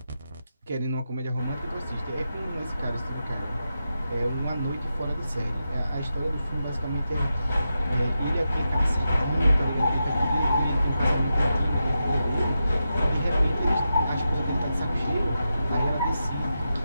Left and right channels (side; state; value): both; inverted; correlation -0.88